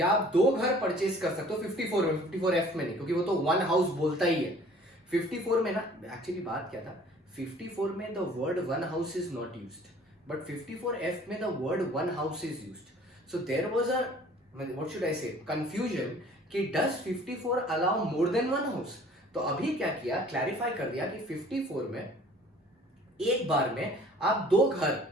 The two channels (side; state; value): both; normal; correlation 0.52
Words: आप 2 घर परचेज कर सकते हो 54 में, 54F में नहीं, क्योंकि वो तो 1 हाउस बोलता ही है। 54 में ना एक्चुअली बात क्या था, 54 में the word 1 house is not used, but 54F में the word 1 house is used. So there was a what should I say confusion कि does 54 allow more than 1 house. तो अभी क्या किया, क्लैरिफाई कर दिया कि 54 में एक बार में आप 2 घर